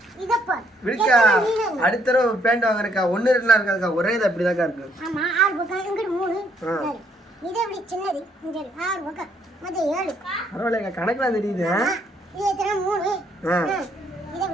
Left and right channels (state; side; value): normal; both; correlation 0.69